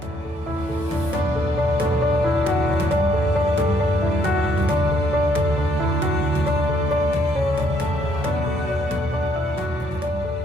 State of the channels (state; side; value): normal; both; correlation 0.68